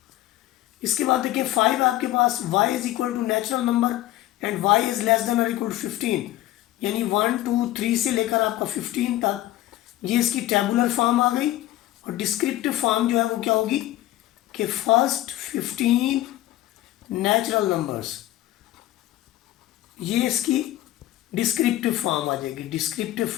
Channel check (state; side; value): quieter; right; 15.1 dB